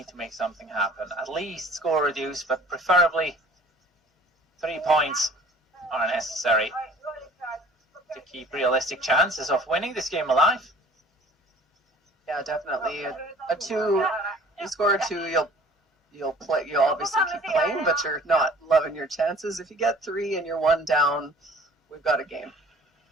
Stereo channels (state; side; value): normal; both; correlation 0.49